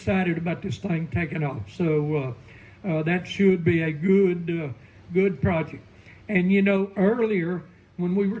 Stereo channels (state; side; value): identical; both; correlation 1.00